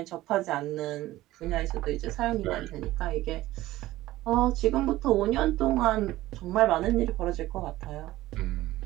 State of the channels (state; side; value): quieter; left; 16.4 dB